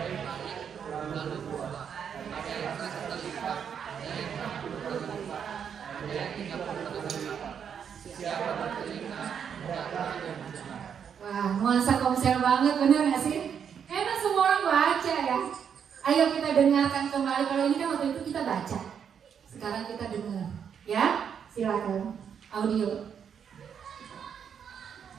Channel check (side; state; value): left; quieter; 7.7 dB